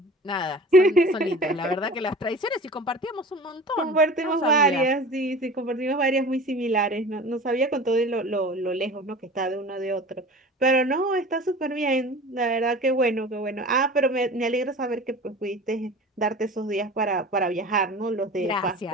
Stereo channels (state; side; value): normal; both; correlation 0.39